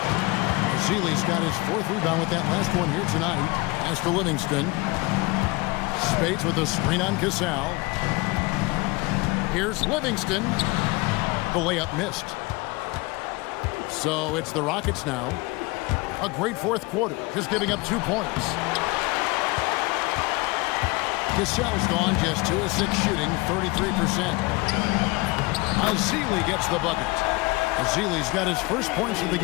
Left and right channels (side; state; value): right; quieter; 24.6 dB